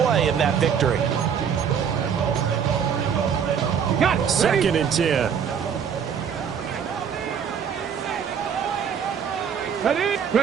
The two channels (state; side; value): quieter; left; 7.5 dB